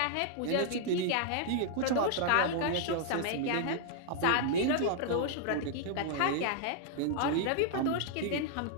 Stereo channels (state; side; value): different; both; correlation -0.01